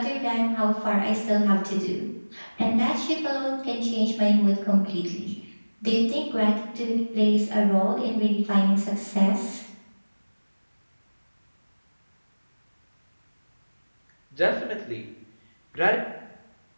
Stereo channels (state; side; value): inverted; both; correlation -1.00